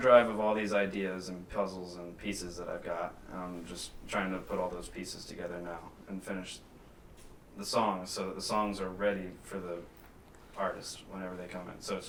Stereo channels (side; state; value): both; identical; correlation 1.00